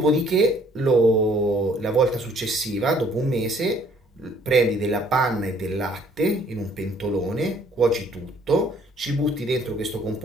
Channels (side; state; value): both; normal; correlation 0.60